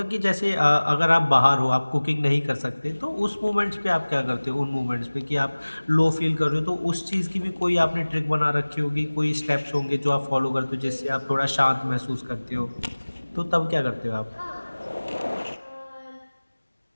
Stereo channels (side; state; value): both; inverted; correlation -1.00